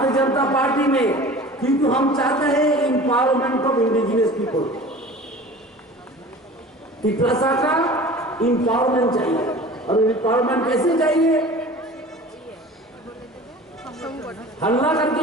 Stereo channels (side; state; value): both; normal; correlation 0.40